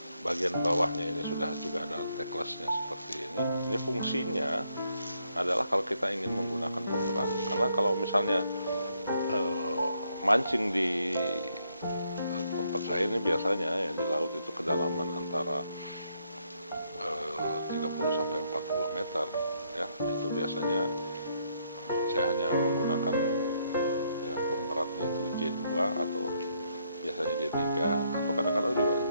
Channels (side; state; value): both; inverted; correlation -0.74